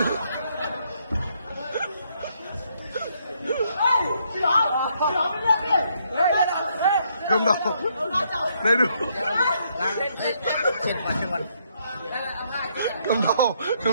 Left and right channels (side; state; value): both; inverted; correlation -0.72